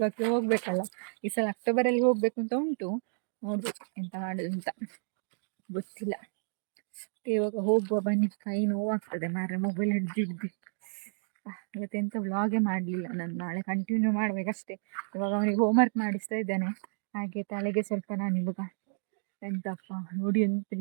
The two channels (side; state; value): left; silent; digital silence